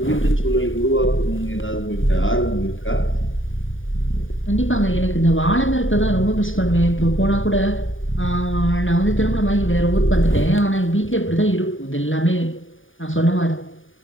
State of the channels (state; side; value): late; right; 0.57 ms